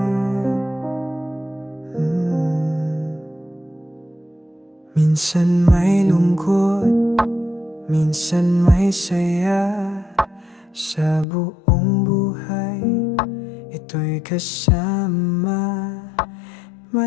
may lungkot, minsan may saya. Sa buong buhay, ito'y kasama.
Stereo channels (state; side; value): drops out; right; at 11.2 s